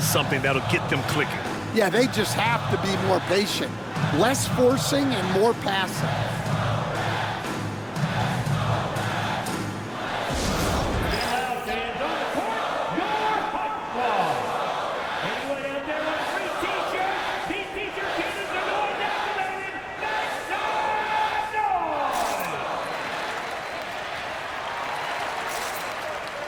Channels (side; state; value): both; identical; correlation 1.00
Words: something that'll get them clicking. Yeah, they just have to be more patient. Less forcing and more passing.